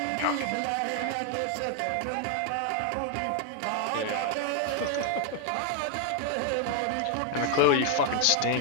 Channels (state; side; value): different; both; correlation 0.00